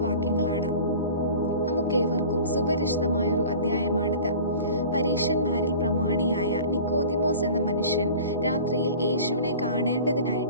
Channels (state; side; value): inverted; both; correlation -0.41